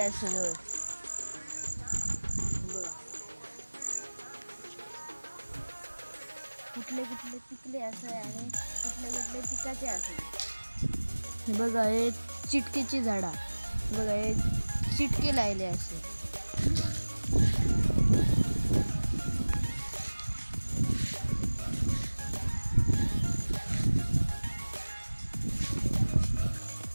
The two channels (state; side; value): inverted; both; correlation -1.00